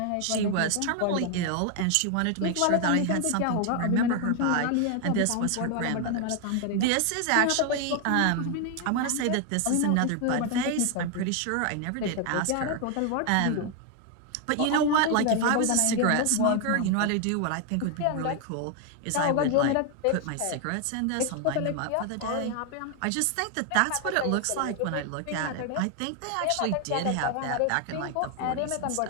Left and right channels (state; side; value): different; both; correlation 0.00